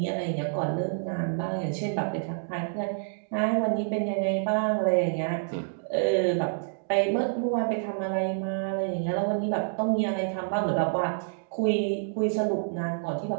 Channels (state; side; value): silent; left; digital silence